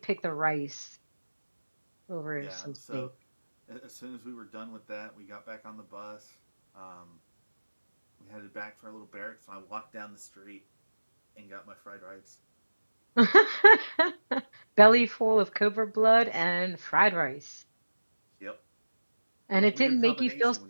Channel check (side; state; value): both; inverted; correlation -1.00